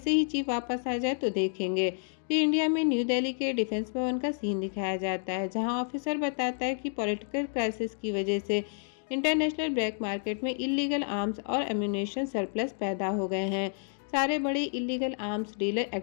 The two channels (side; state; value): right; silent; 58 dB below the other